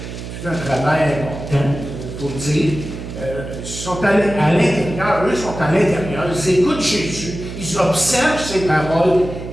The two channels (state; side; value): noise; right; hum, 9 dB below the sound